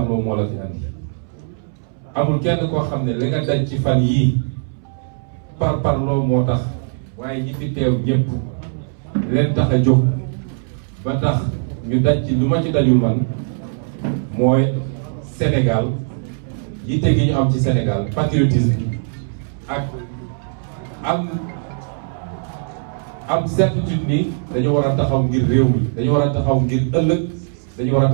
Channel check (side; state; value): left; silent; 66 dB below the other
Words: moo la fi andi amul kenn koo xam ne li nga daj ci fan yii parparloo moo tax waaye ñi fi teew ñëpp leen tax a jóg ba tax ñu daj ci lu ma ci dajul man mooy Sénégal yitte gi ñu am ci Sénégal patriotisme ak am certitude ni dañu war a taxaw ngir réew mi dañu war a taxaw ngir ëllëg dañu war a